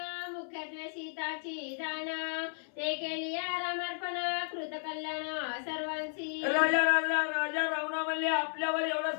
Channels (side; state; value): right; silent; 55 dB below the other